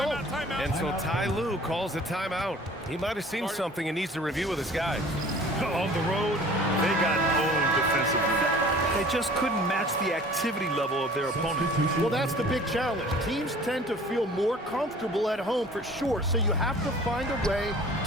Timeout. And so Ty Lue calls a timeout. He might have seen something and needs to review with his guys. On the road, they got owned defensively. They just couldn't match the activity level of their opponent. Well, that's the big challenge. Teams tend to feel more comfortable at home for sure, so you have to find a way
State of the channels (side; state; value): both; normal; correlation 0.48